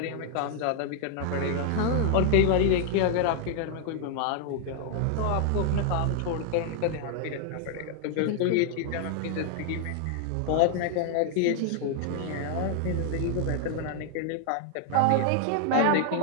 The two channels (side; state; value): both; different; correlation 0.00